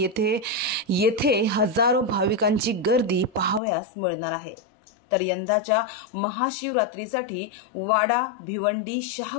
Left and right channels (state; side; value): drops out; right; at 3.6 s